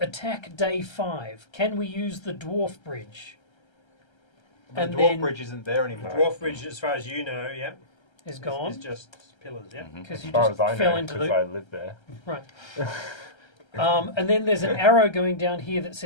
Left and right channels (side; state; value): right; late; 1.3 ms